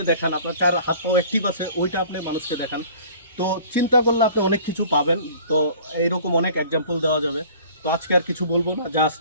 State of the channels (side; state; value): both; inverted; correlation -0.48